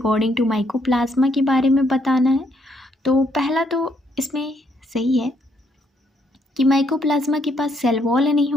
to mycoplasma के बारे में बताना है। तो पहला तो इसमें सही है कि माइकोप्लाज्मा के पास सेल वॉल नहीं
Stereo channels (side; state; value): both; normal; correlation 0.72